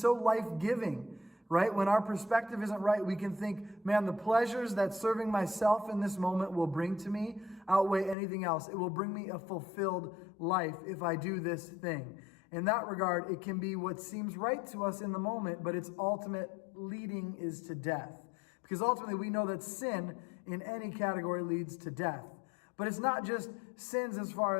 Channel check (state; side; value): drops out; right; at 8.2 s